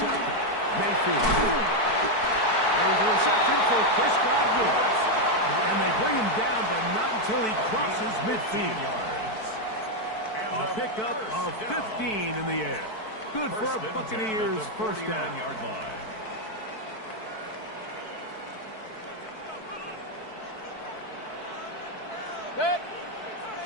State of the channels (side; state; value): right; late; 4.6 ms